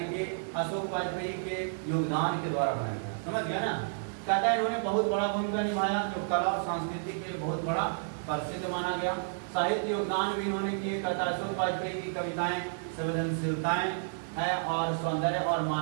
कि अशोक वाजपेयी के योगदान के द्वारा बनाया गया। समझ गया ना? कहता है इन्होंने बहुत बड़ा भूमिका निभाया, जो कला और संस्कृति के लिए बहुत बड़ा प्रसिद्ध माना गया। साहित्य योगदान भी इन्होंने किए। कहता है अशोक वाजपेयी की कविताएं संवेदनशीलताएं है और सौंदर्य और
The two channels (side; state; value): left; silent; digital silence